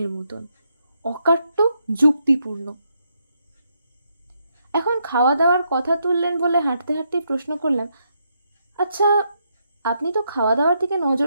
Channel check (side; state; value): both; inverted; correlation -0.78